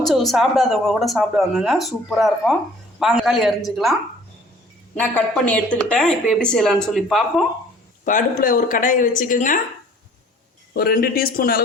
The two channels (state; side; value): normal; both; correlation 0.53